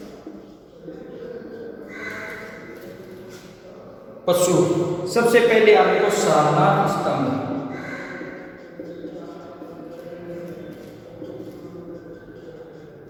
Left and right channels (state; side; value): identical; both; correlation 1.00